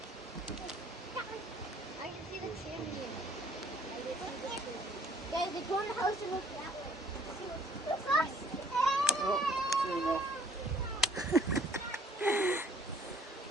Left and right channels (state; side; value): normal; both; correlation 0.57